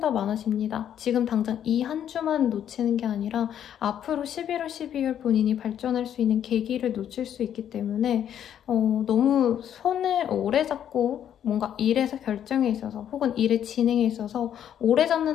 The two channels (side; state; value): right; quieter; 9.8 dB